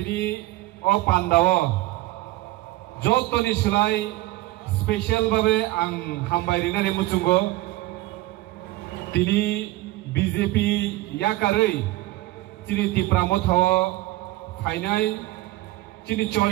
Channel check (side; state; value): left; quieter; 18.0 dB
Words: o pandao jotoni sulai special babe ang hambai rinani muchungo tini BJP yakarei chini tipramo thaw phainai chini